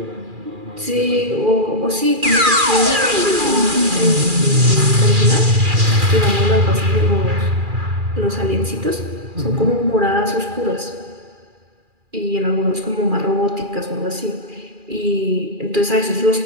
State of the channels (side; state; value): left; late; 2.4 ms